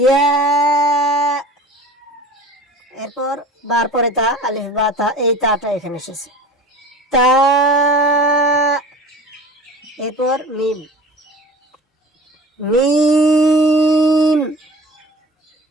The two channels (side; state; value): both; normal; correlation 0.39